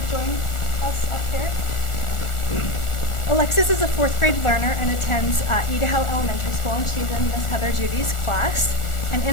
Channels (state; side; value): late; right; 1.4 ms